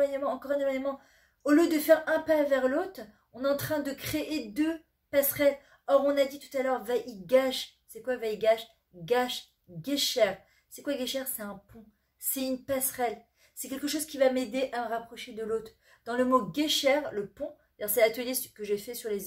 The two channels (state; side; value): identical; both; correlation 1.00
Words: encore un éloignement. Au lieu de faire un pas vers l'autre, on est en train de créer deux passerelles. Or, on a dit tout à l'heure, Vaïgash. C'est quoi Vaïgash? Gash, Gesher. C'est quoi Gesher? C'est un pont. C'est une passerelle. C'est quelque chose qui va m'aider à me rapprocher de l'autre. Dans le mot Gesher, le pont, c'est l'atelier que j'ai fait sur